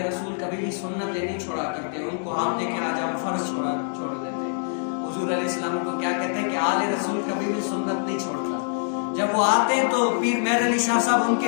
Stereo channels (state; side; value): silent; right; digital silence